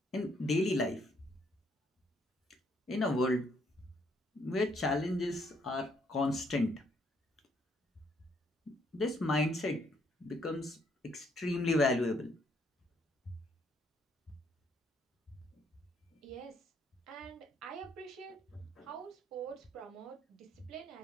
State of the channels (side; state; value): both; normal; correlation 0.70